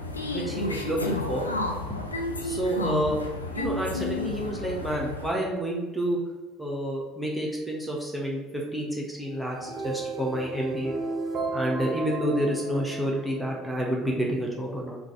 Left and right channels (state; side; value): normal; both; correlation 0.53